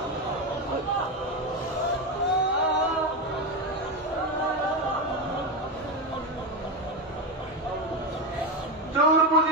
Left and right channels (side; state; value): both; normal; correlation 0.13